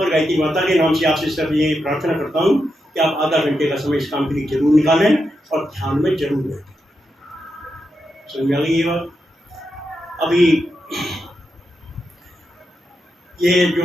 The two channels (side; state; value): both; normal; correlation 0.86